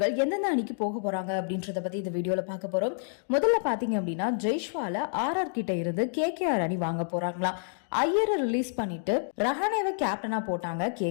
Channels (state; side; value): silent; right; digital silence